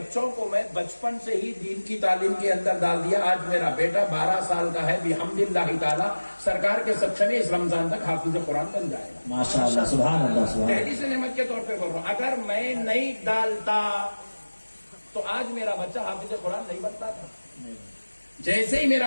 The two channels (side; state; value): both; inverted; correlation -1.00